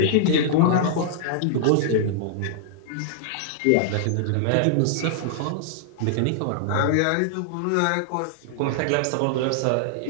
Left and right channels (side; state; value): both; different; correlation -0.01